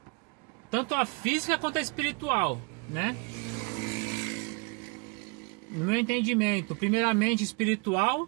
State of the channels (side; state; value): left; quieter; 31.8 dB